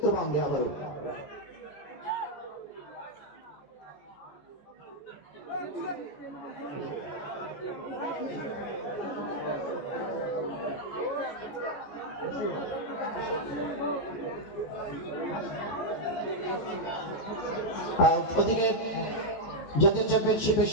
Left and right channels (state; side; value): late; right; 15 ms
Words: আবারও। ওদিকে জাতীয় চ্যাম্পিয়নশিপে